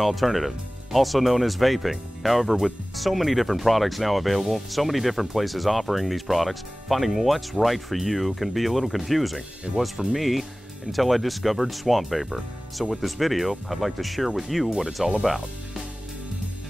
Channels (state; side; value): normal; both; correlation 0.98